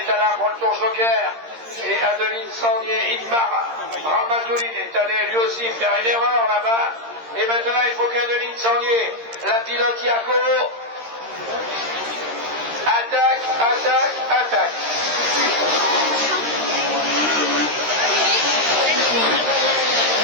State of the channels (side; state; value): left; late; 13 ms